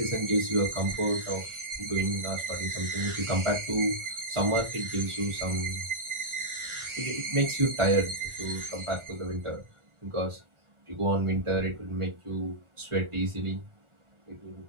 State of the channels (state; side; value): late; left; 1.4 ms